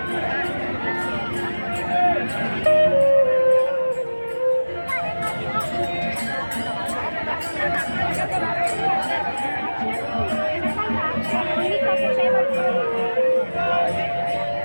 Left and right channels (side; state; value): both; inverted; correlation -1.00